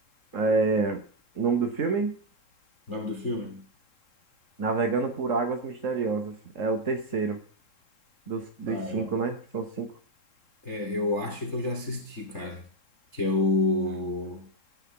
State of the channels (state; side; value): late; right; 3.7 ms